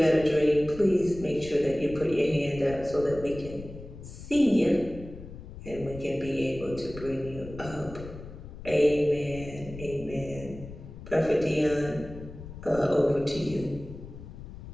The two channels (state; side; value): noise; left; rumble, 13 dB below the sound